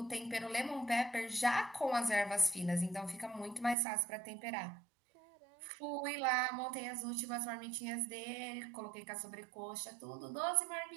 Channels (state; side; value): drops out; left; at 3.8 s